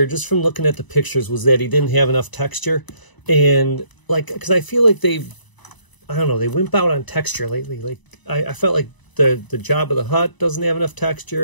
just from looking at the pictures, was that he didn't have enough texture. And like, because I feel like I don't know, they wimp out on texture lately. Like I felt like the Jabba the Hutt doesn't have enough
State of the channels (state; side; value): late; right; 1.0 ms